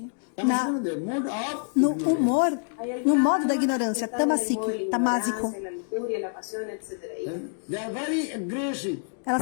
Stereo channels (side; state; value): right; silent; 60 dB below the other